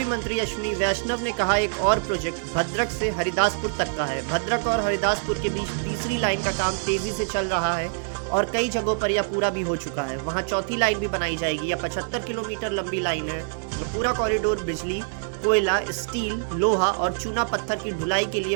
मंत्री अश्विनी वैष्णव ने कहा, एक और प्रोजेक्ट भद्रक से हरिदासपुर तक का है। भद्रक और हरिदासपुर के बीच तीसरी लाइन का काम तेजी से चल रहा है और कई जगहों पर यह पूरा भी हो चुका है। वहां चौथी लाइन भी बनाई जाएगी। यह 75 किलोमीटर लंबी लाइन है। पूरा कॉरिडोर बिजली, कोयला, स्टील, लोहा और चूना पत्थर की ढुलाई के लिए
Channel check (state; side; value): silent; left; digital silence